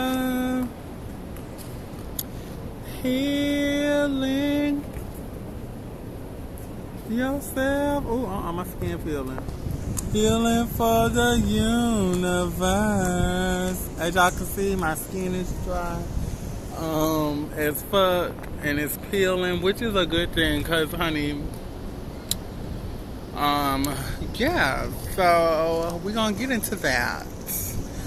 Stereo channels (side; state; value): both; identical; correlation 1.00